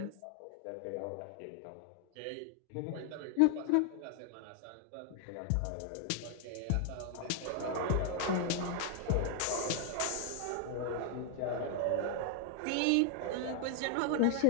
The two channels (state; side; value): different; both; correlation 0.00